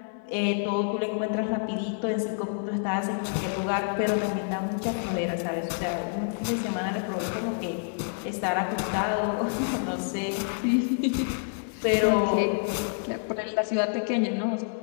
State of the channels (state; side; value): silent; right; digital silence